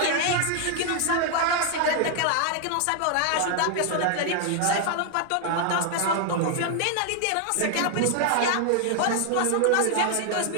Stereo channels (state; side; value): different; both; correlation 0.00